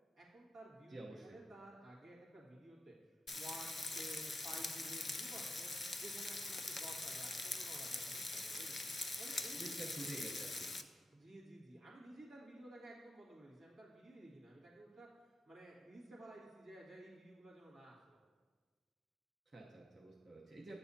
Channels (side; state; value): both; normal; correlation 0.86